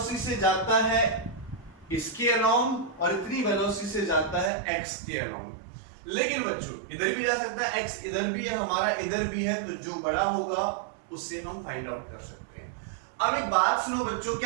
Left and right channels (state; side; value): drops out; left; at 4.5 s